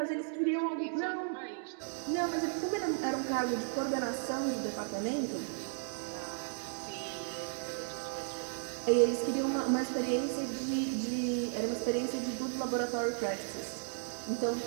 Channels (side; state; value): left; silent; digital silence